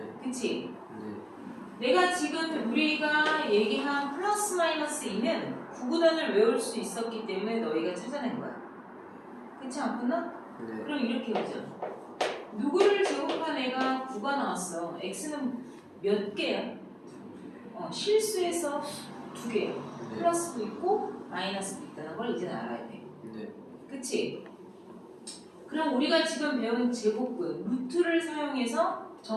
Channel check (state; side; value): identical; both; correlation 1.00